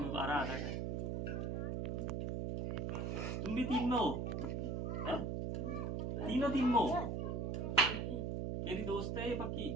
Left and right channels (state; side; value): noise; right; hum, 1 dB below the sound